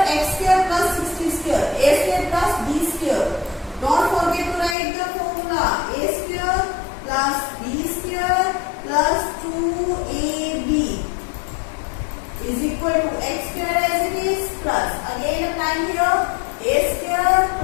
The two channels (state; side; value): drops out; right; at 4.8 s